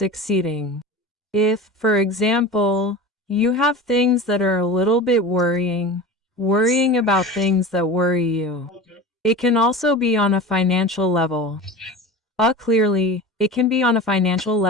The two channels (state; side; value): normal; both; correlation 0.32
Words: If, for example, you have things that are a little bit worrying about things that worry you. It can also be on a financial level. Clearly, it can be on a financial